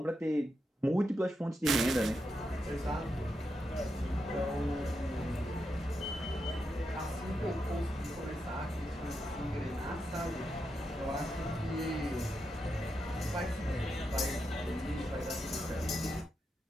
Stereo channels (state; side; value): normal; both; correlation 0.85